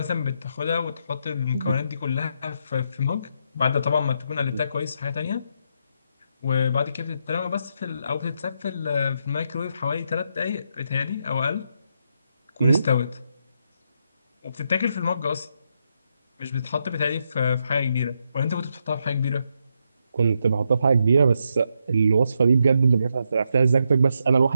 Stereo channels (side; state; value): both; inverted; correlation -0.80